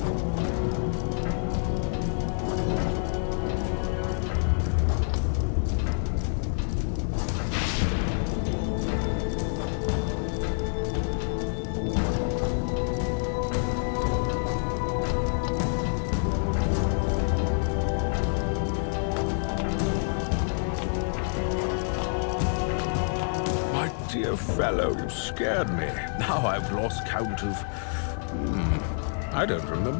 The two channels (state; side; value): silent; right; digital silence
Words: Dear fellow, you scared me. Now I've lost count of... I don't